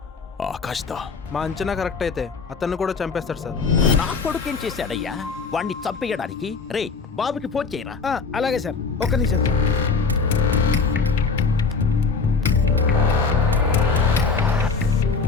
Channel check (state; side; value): quieter; right; 4.8 dB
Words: ఆకాష్దా? మా అంచనా కరెక్ట్ అయితే అతన్ని కూడా చంపేస్తాడు సార్. నా కొడుకు ఏం చేశాడయ్యా వాణ్ణి చంపేయడానికి? రే, బాబుకి ఫోన్ చేయరా. అలాగే సార్, ఒక్క నిమిషం సార్.